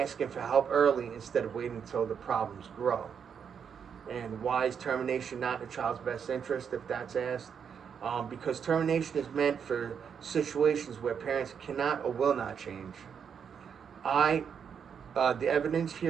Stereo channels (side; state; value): left; quieter; 7.2 dB